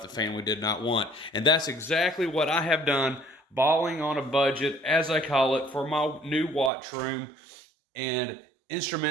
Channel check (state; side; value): drops out; left; at 6.7 s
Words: the family did not want. And that's exactly what I have done, balling on a budget, as I call it, for my new watch room and